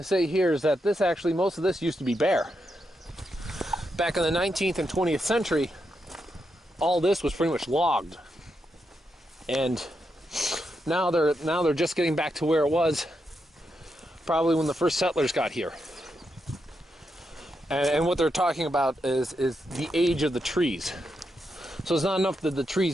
that this actually, most of this used to be bare. Back in the 19th and 20th century, all this was pretty much logged. And now they're just getting back to where it was probably when the first settlers got here. And what they're talking about is the age of the trees. So it's not enough that the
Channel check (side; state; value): both; normal; correlation 0.84